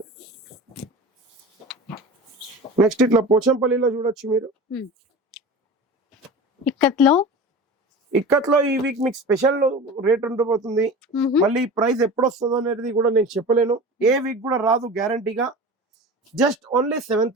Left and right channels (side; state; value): both; normal; correlation 0.33